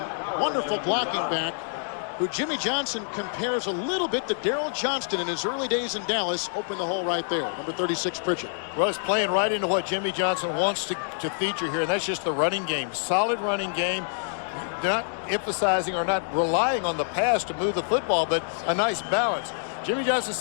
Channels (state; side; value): silent; right; digital silence